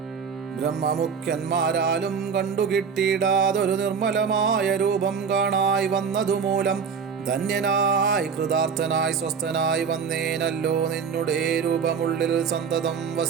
ബ്രഹ്മമുഖ്യന്മാരാലും കണ്ടുകിട്ടിയിടാതൊരു നിർമ്മലമായ രൂപം കാണായി വന്നതുമൂലം ധന്യനായി കൃതാർത്ഥനായി സ്വസ്ഥനായി വന്നേനല്ലോ. നിന്നുടെ രൂപമുള്ളിൽ സന്തതം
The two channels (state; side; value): quieter; left; 6.2 dB